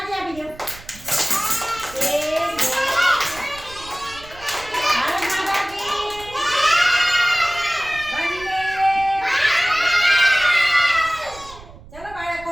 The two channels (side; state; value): right; noise; rumble, 19 dB below the sound